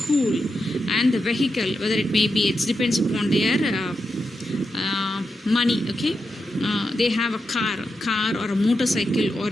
and the vehicle, whether it may be, it depends upon their money. Okay, they have a car or a motorcycle, or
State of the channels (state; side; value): normal; both; correlation 0.87